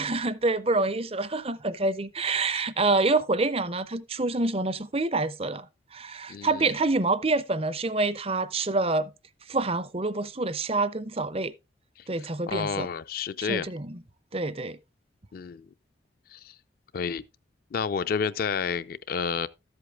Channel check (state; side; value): normal; both; correlation 0.20